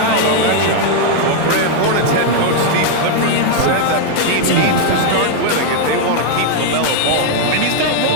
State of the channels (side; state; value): both; different; correlation 0.00